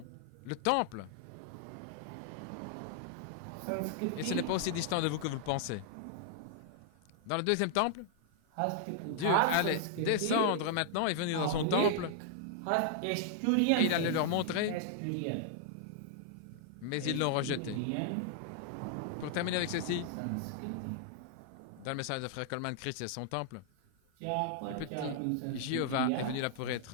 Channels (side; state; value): both; different; correlation -0.01